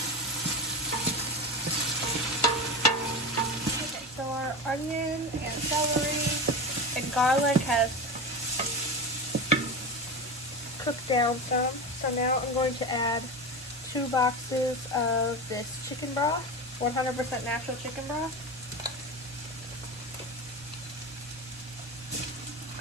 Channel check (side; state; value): both; normal; correlation 0.23